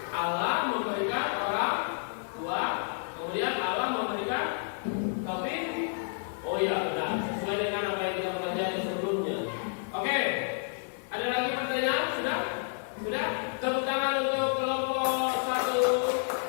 Allah memberikan orang tua, kemudian Allah memberikan taufik. Oh ya, benar. Sesuai dengan apa yang kita pelajari sebelumnya. Oke. Ada lagi pertanyaan? Sudah? Sudah? Tepuk tangan untuk kelompok 1.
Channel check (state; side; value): silent; right; digital silence